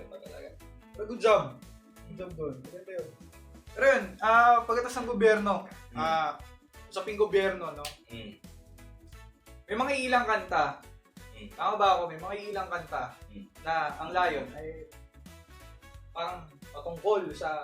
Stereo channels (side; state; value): both; identical; correlation 1.00